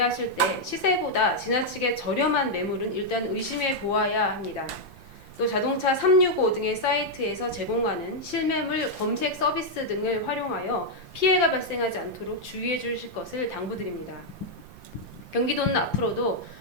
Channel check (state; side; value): late; left; 5.8 ms